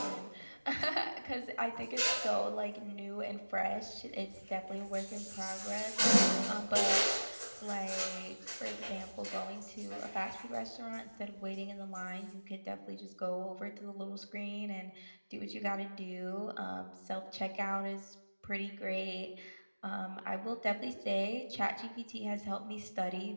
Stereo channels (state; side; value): inverted; both; correlation -1.00